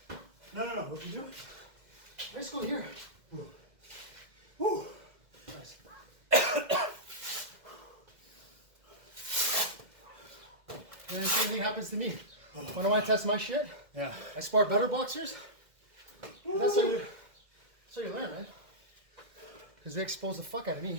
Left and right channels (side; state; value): left; late; 2.0 ms